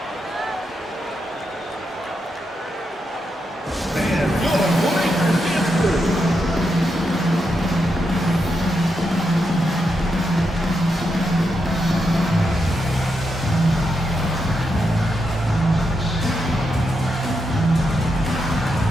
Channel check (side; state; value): both; normal; correlation 0.84